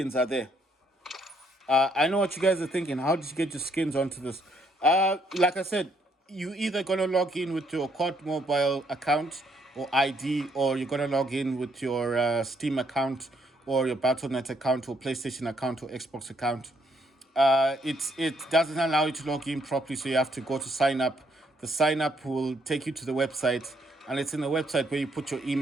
are there. I know what you guys are thinking. How did you get your skins onto this? Like I said, you either gonna log in with your COD mobile account or ID, or you're gonna log in with your Steam account or your Battle.net account or PlayStation account or Xbox account. It doesn't allow you to log in properly, so you have to go to sign up. The sign up will take you to the website, and it's in the website where you put your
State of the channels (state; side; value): normal; both; correlation 0.70